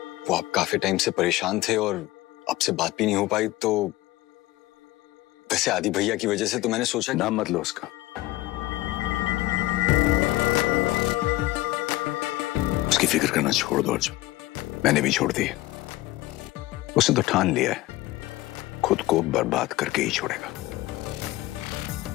वो आप काफी टाइम से परेशान थे और आपसे बात भी नहीं हो पाई, तो वैसे आदि भैया की वजह से तो मैंने सोचा। नाम मत लो उसका। उसकी फिक्र करना छोड़ दो अर्जुन, मैंने भी छोड़ दी है। उसने तो ठान लिया है खुद को बर्बाद करके ही छोड़ेगा।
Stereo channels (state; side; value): quieter; right; 18.0 dB